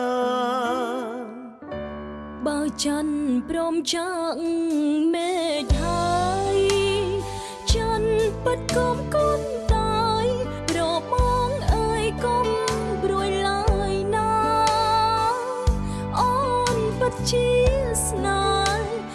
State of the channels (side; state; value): both; identical; correlation 1.00